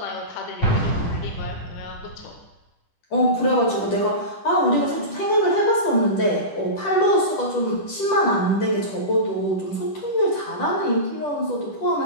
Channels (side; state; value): right; late; 10 ms